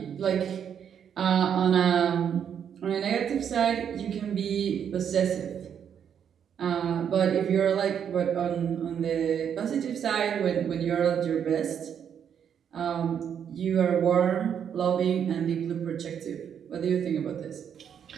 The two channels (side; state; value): left; quieter; 8.3 dB